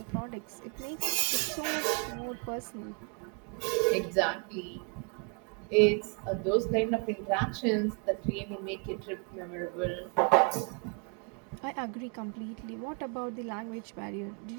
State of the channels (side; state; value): left; quieter; 35.5 dB